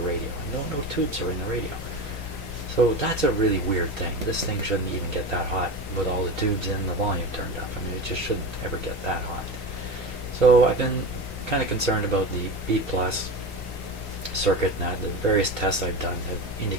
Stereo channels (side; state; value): both; normal; correlation 0.25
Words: radio. No tubes are in the radio. So that's a really weird thing. This thing shouldn't even get that hot with all the tubes and the volume turned up. I mean, it just shouldn't ever get that hot. So I've been kind of concerned about the B+ circuit, and that the various tests I've done have